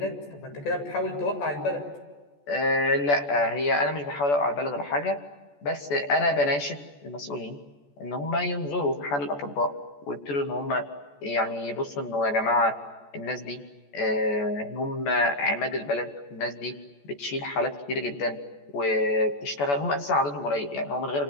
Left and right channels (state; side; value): late; right; 14 ms